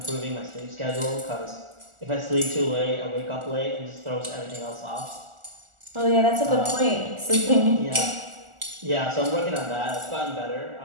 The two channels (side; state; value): left; late; 1.4 ms